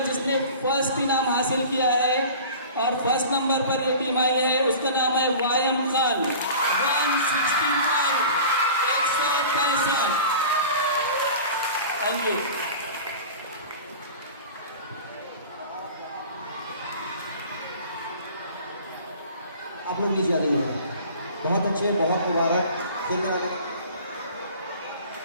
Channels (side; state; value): both; inverted; correlation -0.40